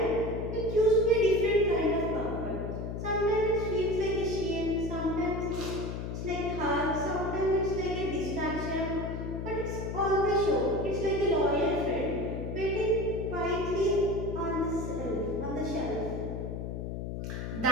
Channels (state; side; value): noise; left; hum, 5 dB below the sound